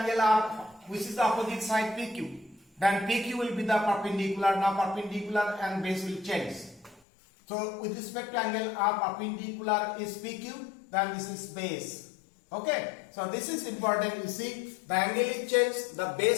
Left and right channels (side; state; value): right; drops out; at 7.0 s